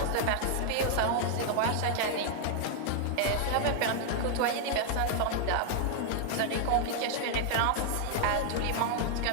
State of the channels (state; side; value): different; both; correlation 0.00